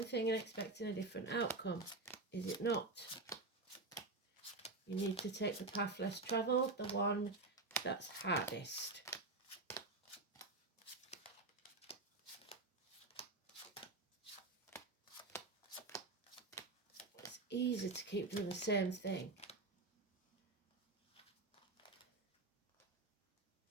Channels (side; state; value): left; quieter; 3.3 dB